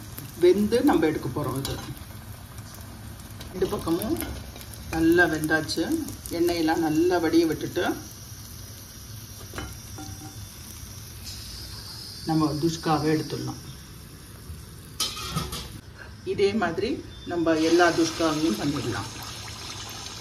வெந்து நம்ம எடுக்க போகிறோம். இது 2 பக்கமும் நல்லா வெந்தாச்சு. எண்ணெயெல்லாம் நல்லா வடிய விட்டுட்டு நம்ம துஷ்காவை எடுத்துடலாம். இதே மாதிரி நம்ம எல்லா துஷ்காவையும் பண்ணிடலாம்.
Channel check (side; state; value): both; identical; correlation 1.00